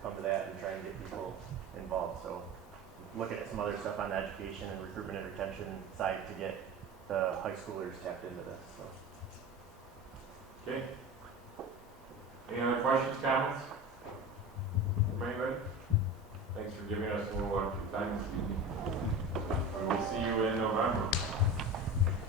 to that and try and get people involved. So looking at some other stuff on the education and recruitment and retention side to get the high schoolers tapped into this. So. Okay. Any other questions, comments from anybody? Thanks for giving us a little extra time this evening. We will see you in November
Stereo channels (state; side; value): normal; both; correlation 0.30